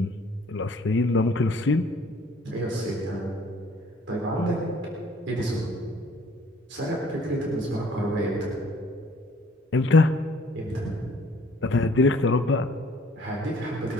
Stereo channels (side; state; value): both; normal; correlation 0.57